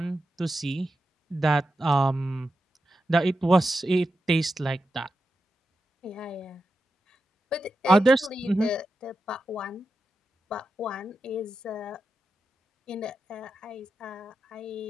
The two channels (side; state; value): both; normal; correlation 0.89